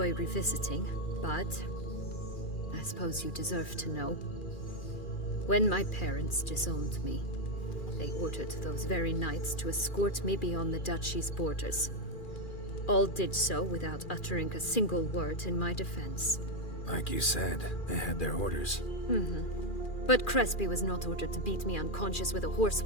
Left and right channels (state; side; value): late; right; 2.4 ms